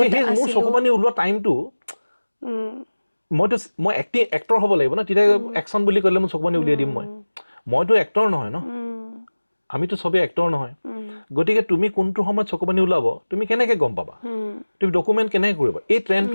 সেই মোৰ চকুপানী ওলোৱা টাইমটো, মই এক্টৰ হ'ব লাগিব ন, তেতিয়া একশ্যন বুলি ক'লে মোৰ চকুপানী উলিয়াই দিম, মইতো এক্টৰ নহয় ন, আমিতো চবেই এক্টৰ নহয়, গতিকে তুমি কোনটো সময়ত চকুপানী ওলাব তুমি কেনেকৈ গম পাবা, তুমি ডকুমেণ্ট কেনেকৈ কৰিবা, এই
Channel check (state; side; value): inverted; both; correlation -1.00